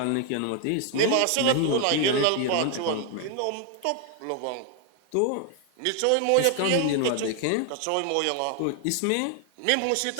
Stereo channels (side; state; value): both; different; correlation 0.00